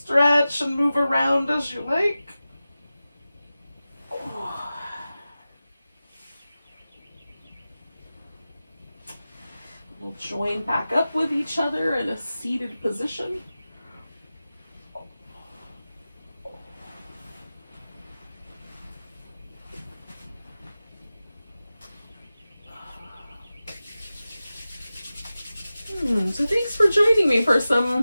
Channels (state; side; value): inverted; both; correlation -0.95